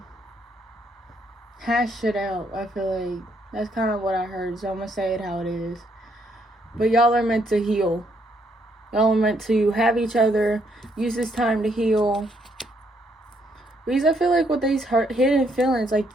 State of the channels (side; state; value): both; normal; correlation 0.72